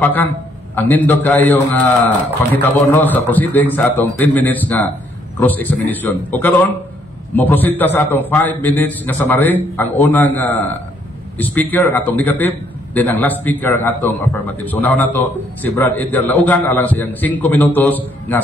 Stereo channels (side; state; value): both; normal; correlation 0.68